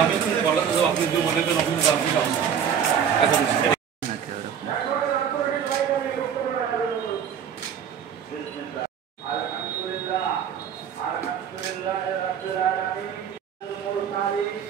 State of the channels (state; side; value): quieter; left; 8.1 dB